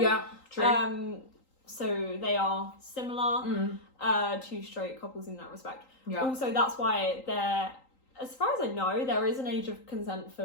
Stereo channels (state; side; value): late; right; 3.8 ms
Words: true. So they are similar to straight couples in that respect. Yeah. Also, that's why there, as far as I know, there is an age of consent